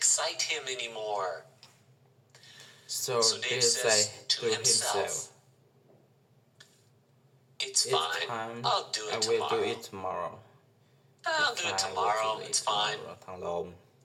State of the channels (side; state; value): both; identical; correlation 1.00